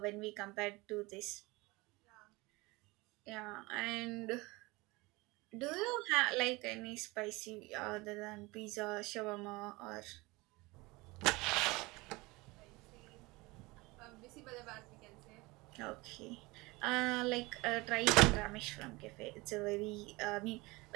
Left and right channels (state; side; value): quieter; left; 23.1 dB